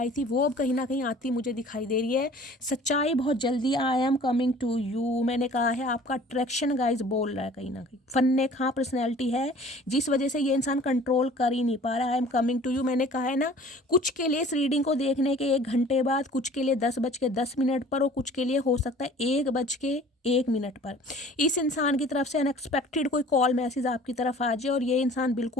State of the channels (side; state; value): both; normal; correlation 0.49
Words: थी वो अब कहीं ना कहीं आती मुझे दिखाई दे रही है। सच्चाई बहुत जल्दी, I am coming to you. मैंने कहा है आपका अट्रैक्शन गाइज बोल रहा है, कहीं ना कहीं फन्ने खां पर्सनैलिटी है जिस वजह से ये इंसान कंट्रोल कर ही नहीं पा रहा है। I am coming to you मैंने कहा है ना, कुछ के लिए इस रीडिंग को देखने के 1 घंटे बाद, कुछ के लिए 10:10 पर और कुछ के लिए हो सकता है 1:01 पर इस इंसान की तरफ से अनएक्सपेक्टेड कोई कॉल मैसेज आपकी तरफ आ जाए और ये इंसान